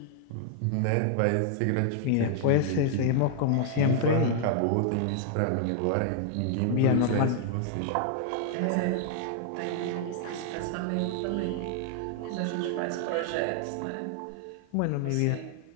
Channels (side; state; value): both; different; correlation -0.01